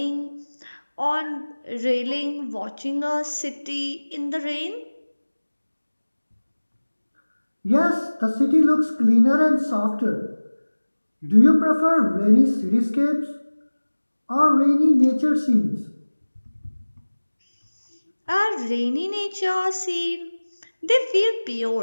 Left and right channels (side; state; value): both; inverted; correlation -1.00